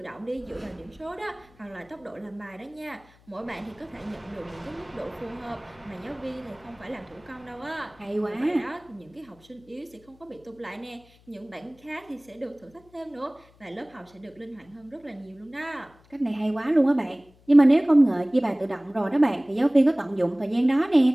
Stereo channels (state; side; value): noise; left; hum, 29 dB below the sound